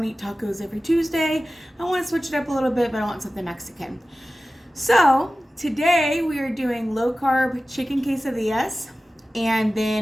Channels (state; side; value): normal; both; correlation 0.96